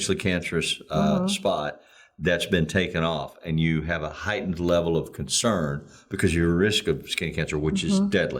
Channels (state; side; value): identical; both; correlation 1.00